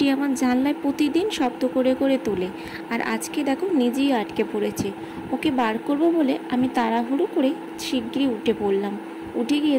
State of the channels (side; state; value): both; identical; correlation 1.00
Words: আমার জানলায় প্রতিদিন শব্দ করে করে তোলে, আর আজকে দেখো নিজেই আটকে পড়েছে। ওকে বার করবো বলে আমি তাড়াহুড়ো করে শিগগিরই উঠে পড়লাম। উঠে গিয়ে